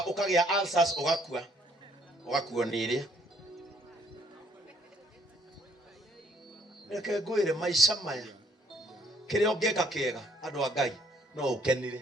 ũkagĩa ulcers ũgakuo nĩ ĩrĩa. Reke ngwĩre maica maya kĩrĩa ũngĩka kĩega andũ a Ngai no ũkenire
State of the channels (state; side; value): normal; both; correlation 0.65